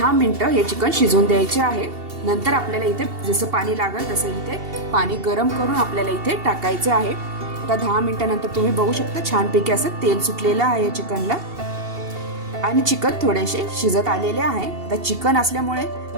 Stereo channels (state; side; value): late; left; 2.7 ms